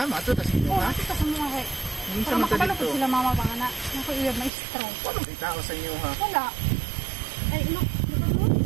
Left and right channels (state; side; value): drops out; left; at 4.5 s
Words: ato ta sa inyo, Oo, ha? ati ka sa mga kay. Minsan Para man ka makapalapot dito. sila mama pa nga na. Naku iya maestro. Paano itao sa inyo, ha? Wala. Ay, lupa mo?